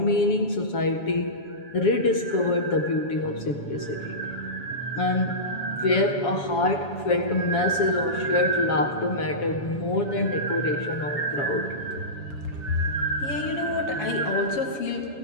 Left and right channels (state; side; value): late; right; 7.1 ms